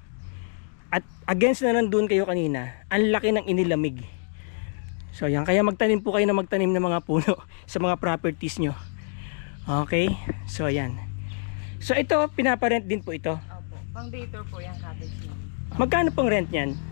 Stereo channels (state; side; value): silent; right; 61 dB below the other